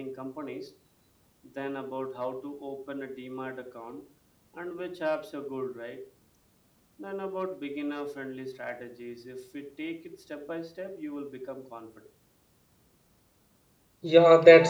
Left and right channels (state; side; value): identical; both; correlation 1.00